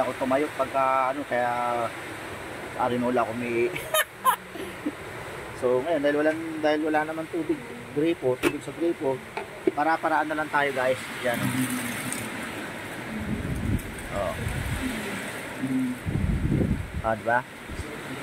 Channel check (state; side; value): identical; both; correlation 1.00